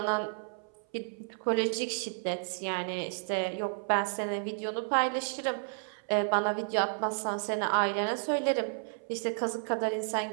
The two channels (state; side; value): silent; left; 56 dB below the other